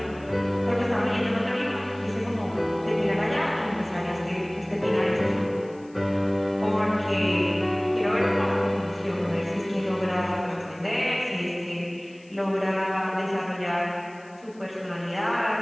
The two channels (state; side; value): noise; left; hiss, 29 dB below the sound